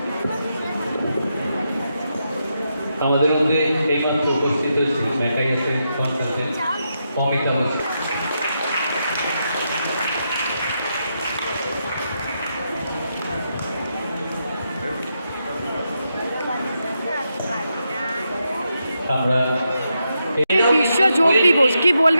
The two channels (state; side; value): inverted; both; correlation -0.84